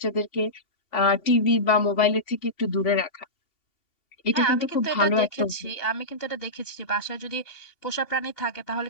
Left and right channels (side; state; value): right; late; 2.8 ms